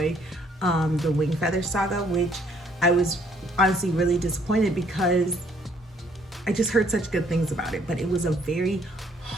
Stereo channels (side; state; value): both; normal; correlation 0.65